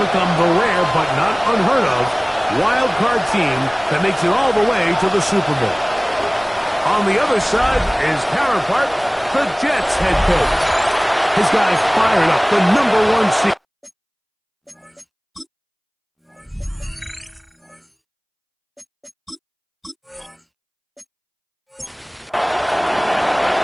become the rare but not unheard of wild card team that makes it all the way to the Super Bowl. On the other side, his counterpart, the Jets head coach. His guys fired up the #1 seed.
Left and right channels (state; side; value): identical; both; correlation 1.00